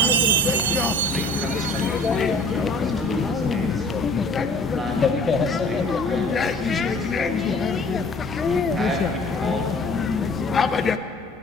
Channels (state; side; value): normal; both; correlation 0.50